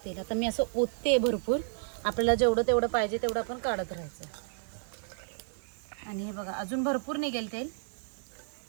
तेल आता मी असं ओतते भरपूर. आपल्याला जेवढं तेवढं पाहिजे तेवढं आपण काढत राहायचं. आणि हे बघा, अजून भरपूर निघेल तेल.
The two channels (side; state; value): left; silent; digital silence